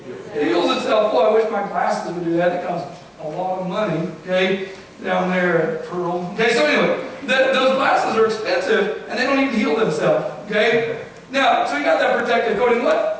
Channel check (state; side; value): identical; both; correlation 1.00